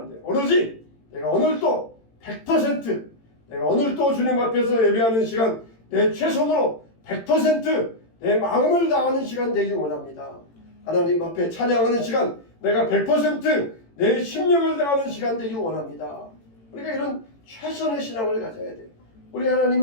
돼요. 오로지 내가 오늘 또 100% 내가 오늘 또 주님 앞에서 예배하는 시간 내 최선으로 100% 내 마음을 다하는 시간 되기 원합니다. 하나님 앞에 찬양하는 시간 내가 100%내 심령을 다하는 시간 되기 원합니다. 우리가 이런 최선의 신앙을 가져야 돼요. 우리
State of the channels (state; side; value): late; right; 18 ms